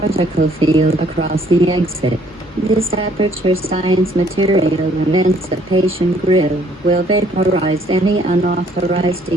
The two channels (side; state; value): both; normal; correlation 0.63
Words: field across the exit. This aperture science material emancipation grill will vaporize any unauthorized